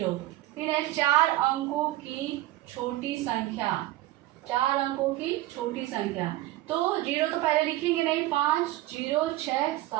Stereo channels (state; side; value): quieter; left; 16.5 dB